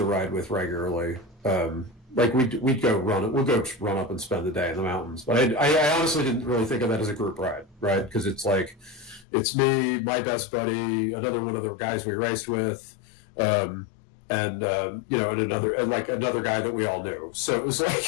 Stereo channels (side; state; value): right; drops out; at 9.2 s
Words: ride with regularly. Like we'd go run. We'll go run up and spend the day in the mountains. But I honestly didn't really think of that as a group ride, right? Because it's like, it's me, my best buddy, another one of the guys we raced with, and another guy that we all knew. So it was